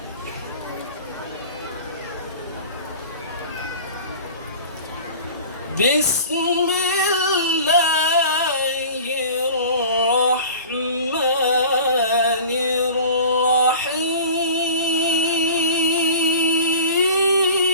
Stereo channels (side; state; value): both; inverted; correlation -0.40